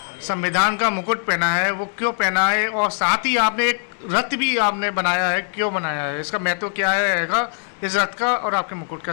संविधान का मुकुट पहना है, वो क्यों पहना है? और साथ ही आपने एक रथ भी आपने बनाया है, क्यों बनाया है? इसका महत्व क्या है इस रथ का और आपके मुकुट का?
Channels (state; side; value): silent; right; 59 dB below the other